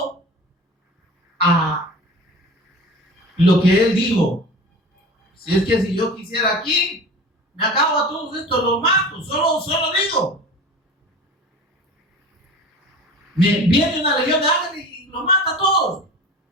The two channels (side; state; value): both; normal; correlation 0.36